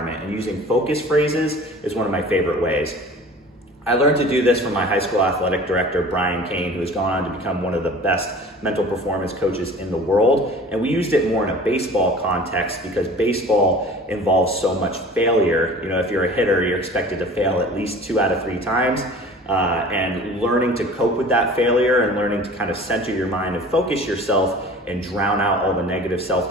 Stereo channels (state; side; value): normal; both; correlation 0.43